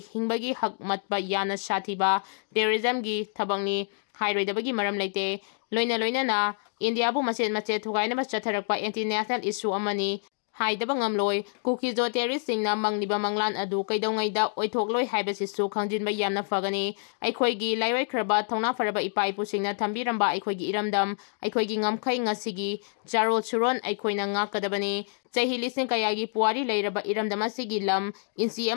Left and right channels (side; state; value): right; silent; 60 dB below the other